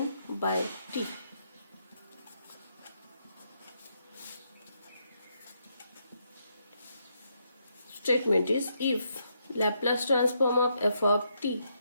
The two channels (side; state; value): both; inverted; correlation -0.77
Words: by t. Statement is, if Laplace transform of f of t